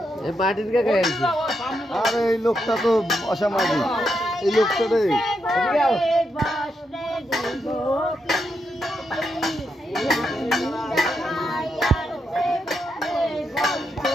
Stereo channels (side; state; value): both; normal; correlation 0.83